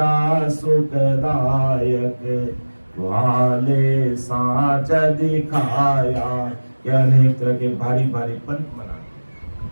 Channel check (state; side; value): inverted; both; correlation -1.00